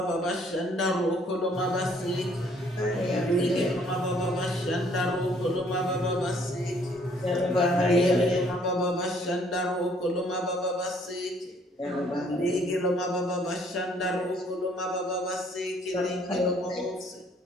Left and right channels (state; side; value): normal; both; correlation 0.62